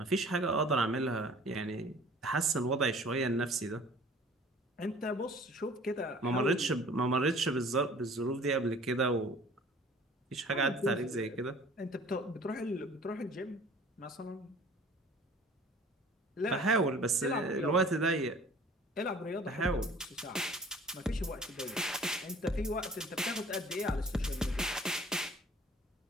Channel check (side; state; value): both; normal; correlation 0.49